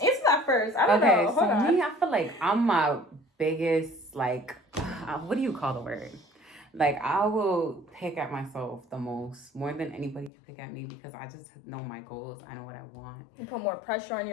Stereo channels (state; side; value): drops out; right; at 10.3 s